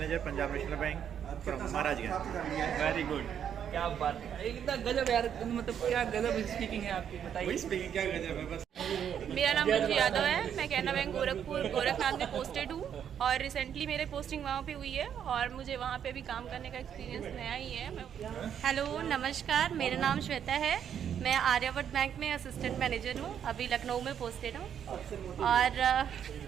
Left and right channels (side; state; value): left; quieter; 8.8 dB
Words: Punjab National Bank from Maharajganj. Very good, क्या बात है, एकदम गजब यार, मतलब क्या गजब स्पीकिंग है आपकी, बताइए। स्पीकिंग क्या गजब है बस। मेरा नाम रुचि यादव है, मैं कैनरा बैंक गोरखपुर गोरखनाथ में पोस्टेड हूँ और रिसेंटली मेरे पोस्टिंग वहाँ पे हुई है और मुझे वहाँ पे भी काम करने का एक्सपीरियंस नया ही है। हेलो, नमस्कार, मेरा नाम श्वेता है, मैं आर्यावर्त बैंक में असिस्टेंट मैनेजर हूँ, अभी लखनऊ में पोस्टेड हूँ। और